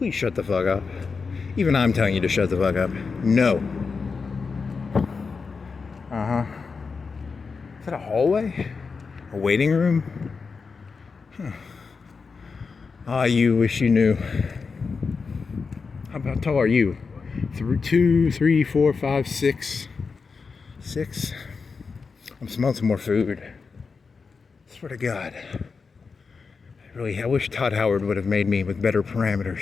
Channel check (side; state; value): right; quieter; 4.9 dB